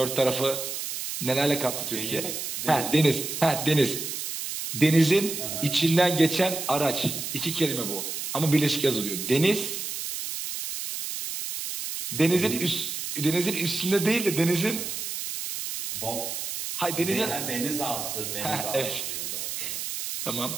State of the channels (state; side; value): noise; right; hiss, 5 dB below the sound